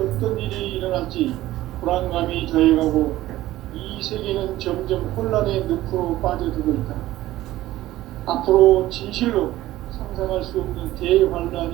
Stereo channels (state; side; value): quieter; left; 15.6 dB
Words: 일이 일어날지 불안감이 더해가고 이 세계는 점점 혼란의 늪으로 빠져들고 있다. 앞으로 진실로 상상할 수 없는